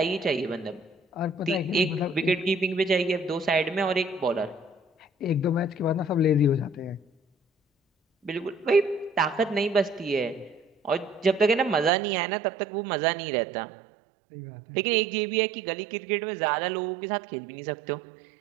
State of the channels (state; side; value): drops out; left; at 11.9 s